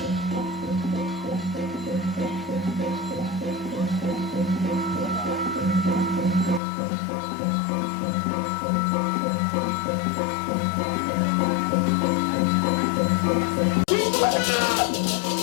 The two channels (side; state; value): right; drops out; at 6.6 s